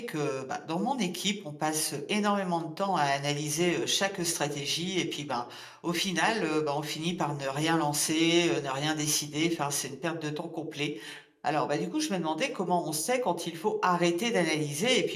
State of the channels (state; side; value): identical; both; correlation 1.00